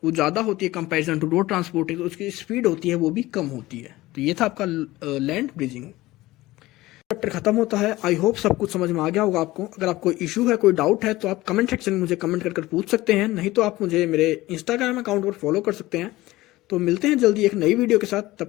वो ज़्यादा होती है कंपैरिजन टू रोड ट्रांसपोर्ट, तो उसकी स्पीड होती है वो भी कम होती है। तो ये था आपका लैंड ब्रिजिंग। चैप्टर खत्म होता है। आई होप सब कुछ समझ में आ गया होगा आपको। अगर आपको इशू है, कोई डाउट है, तो आप कमेंट सेक्शन में मुझे कमेंट कर पूछ सकते हैं, नहीं तो आप मुझे मेरे इंस्टाग्राम अकाउंट पर फॉलो कर सकते हैं। तो मिलते हैं जल्दी एक नई वीडियो के साथ,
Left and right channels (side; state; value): right; quieter; 18.1 dB